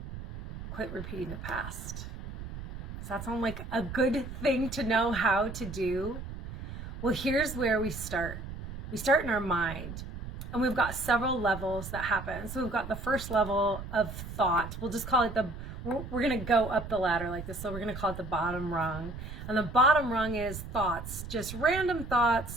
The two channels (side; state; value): right; noise; rumble, 9 dB below the sound